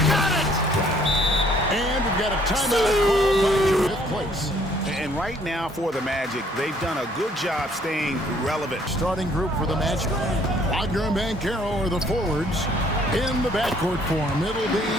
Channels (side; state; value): both; normal; correlation 0.62